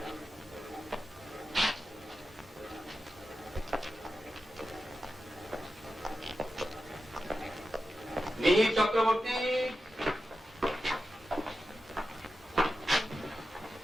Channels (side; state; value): both; normal; correlation 0.91